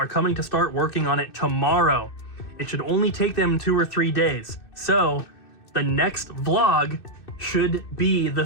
coming to start working on it tomorrow. It should only take them 2 or 3 days. So the next vlog should be the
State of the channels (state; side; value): late; right; 2.6 ms